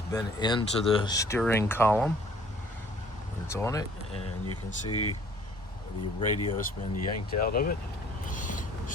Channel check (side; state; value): both; normal; correlation 0.56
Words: been into the steering column. It's on it, and you can see the radio's been yanked out of it.